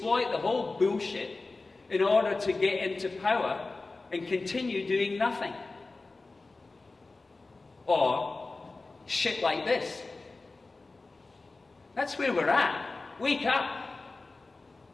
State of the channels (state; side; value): quieter; right; 3.5 dB